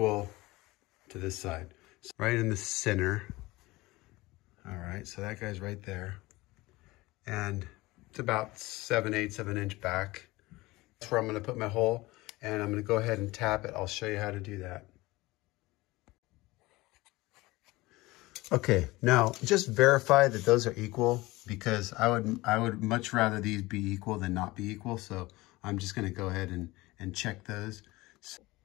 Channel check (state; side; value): quieter; right; 20.6 dB